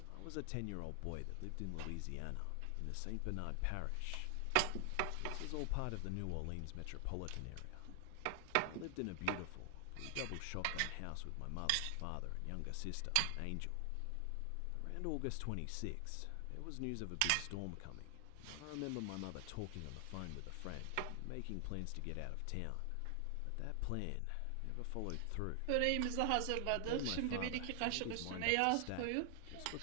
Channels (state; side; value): different; both; correlation 0.00